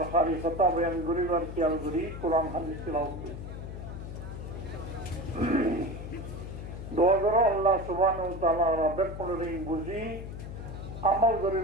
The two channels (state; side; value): noise; left; hum, 9 dB below the sound